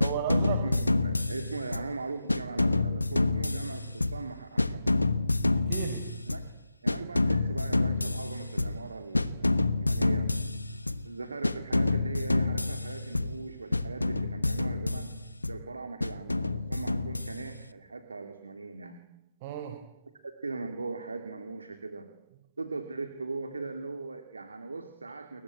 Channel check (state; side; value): inverted; both; correlation -0.90